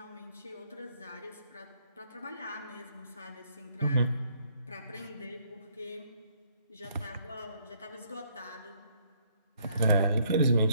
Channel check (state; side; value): inverted; both; correlation -0.66